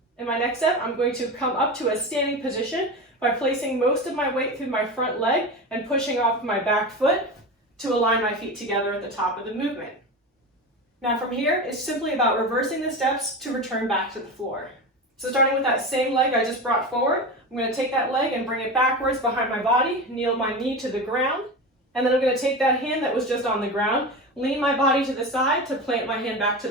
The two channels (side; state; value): both; normal; correlation 0.25